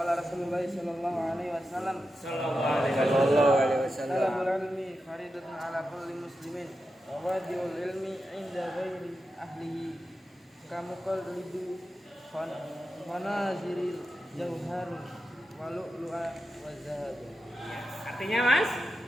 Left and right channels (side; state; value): both; normal; correlation 0.90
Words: Rasulullah sallallahu alaihi wasallam talabul ilmi faridatun ala kulli muslimin wa wadi'ul ilmi inda ghairi ahlihi kamukal lidu fanaziril jauhar wa lu'lu'a wa zahab. Artinya Mas?